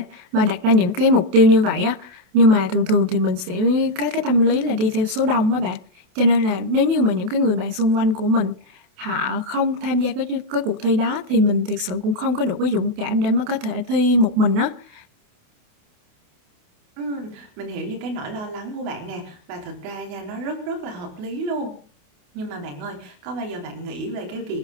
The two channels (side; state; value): left; late; 28 ms